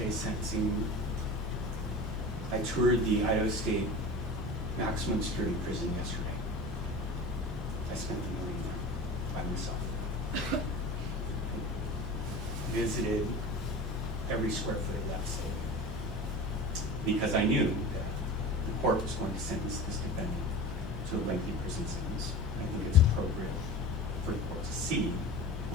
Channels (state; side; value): normal; both; correlation 0.33